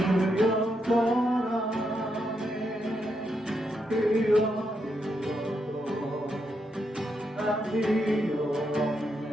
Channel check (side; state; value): both; normal; correlation 0.81